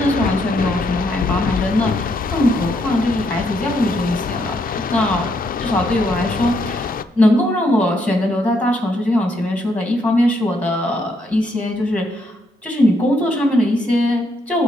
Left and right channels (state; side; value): normal; both; correlation 0.74